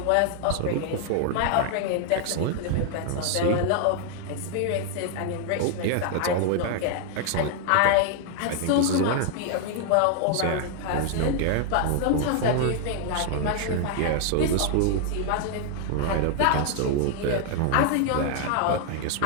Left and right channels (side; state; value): both; different; correlation 0.00